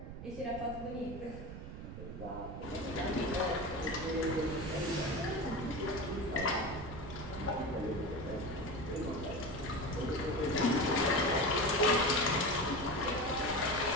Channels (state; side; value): noise; right; rumble, 10 dB below the sound